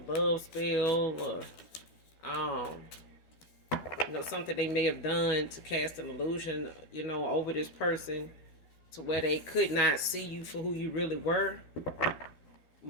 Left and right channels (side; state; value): right; late; 12 ms